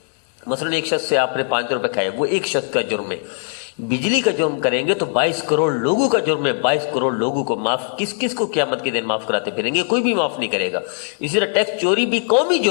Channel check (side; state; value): right; silent; 66 dB below the other